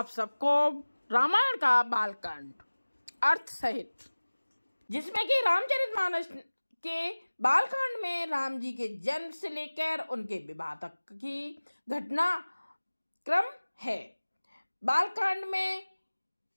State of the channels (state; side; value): inverted; both; correlation -1.00